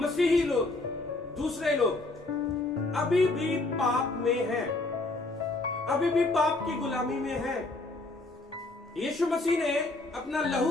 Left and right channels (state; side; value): quieter; right; 3.0 dB